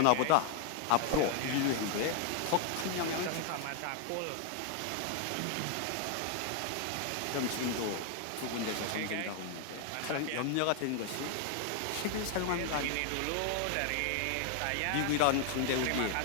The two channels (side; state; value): both; different; correlation 0.00